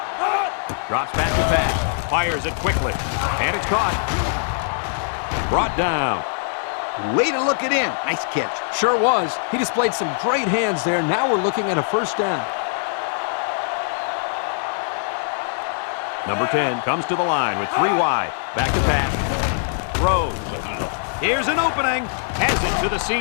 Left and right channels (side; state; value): right; silent; 64 dB below the other